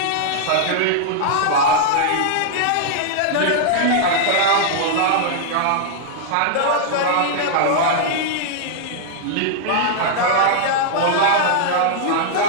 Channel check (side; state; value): both; different; correlation -0.01